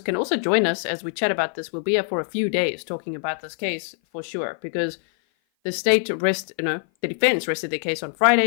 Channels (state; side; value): silent; right; 56 dB below the other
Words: can also join us as we chat about this. We'll be here for a few days talking about this case for sure, because the defense rested their case on